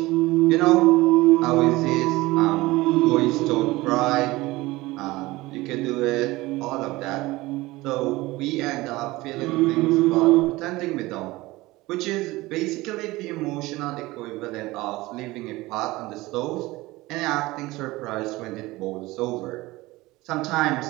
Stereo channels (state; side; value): quieter; left; 19.9 dB